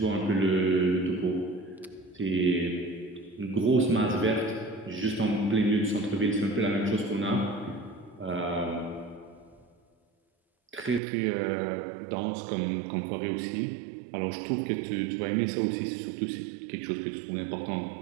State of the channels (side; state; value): left; drops out; at 11.0 s